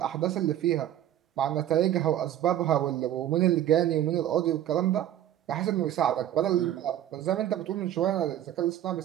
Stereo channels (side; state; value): left; quieter; 11.7 dB